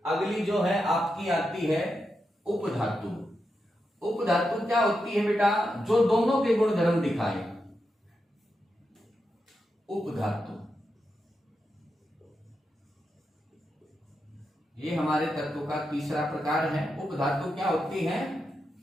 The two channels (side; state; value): both; normal; correlation 0.87